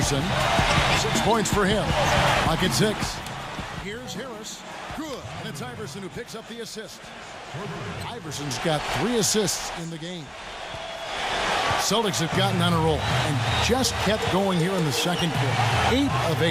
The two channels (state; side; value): identical; both; correlation 1.00